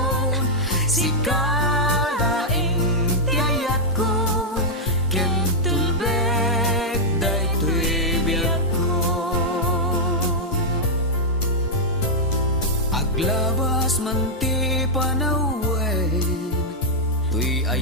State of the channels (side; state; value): both; normal; correlation -0.06